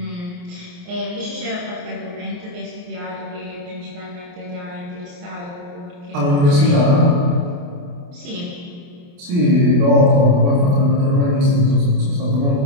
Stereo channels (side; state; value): left; late; 28 ms